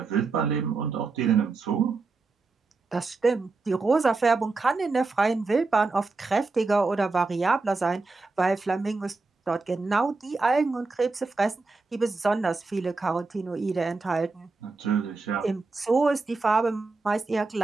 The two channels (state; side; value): quieter; left; 3.9 dB